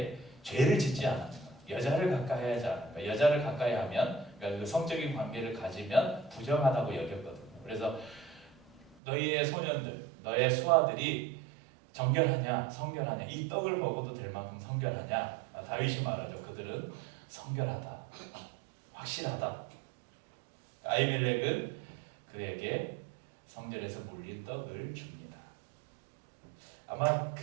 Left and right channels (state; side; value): drops out; left; at 9.0 s